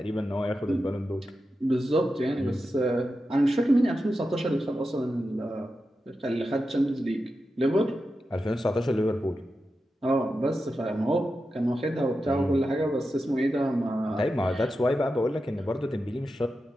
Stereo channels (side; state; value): both; normal; correlation 0.90